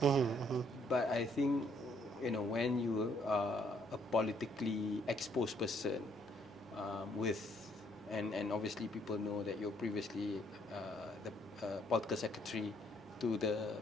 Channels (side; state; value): both; normal; correlation 0.68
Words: But I think, when you are a politically exposed person, and obviously people know that you're previously the political secretary to the